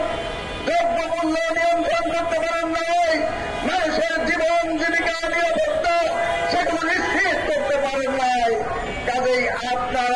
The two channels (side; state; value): both; identical; correlation 1.00